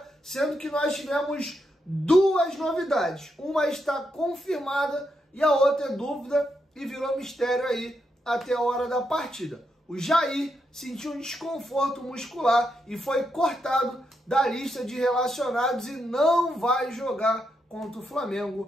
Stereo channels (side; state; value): both; normal; correlation 0.82